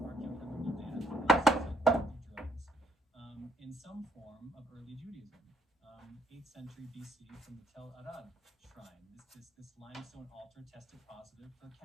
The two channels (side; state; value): both; normal; correlation 0.69